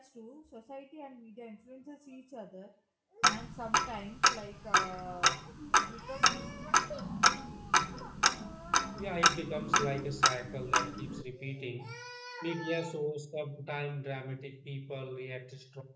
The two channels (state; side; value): identical; both; correlation 1.00